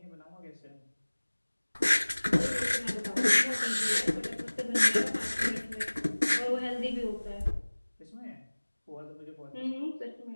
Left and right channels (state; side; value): inverted; both; correlation -1.00